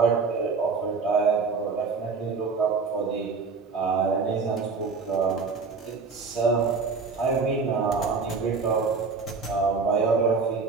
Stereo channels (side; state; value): left; quieter; 4.8 dB